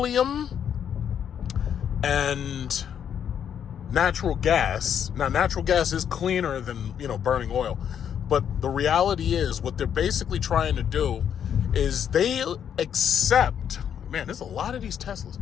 and natural gas. Now, natural gas is cleaner than, burning oil. But the reality is what they're basically trying to do is they accept, man, there's a lot of these Teslas.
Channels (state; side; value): quieter; right; 8.7 dB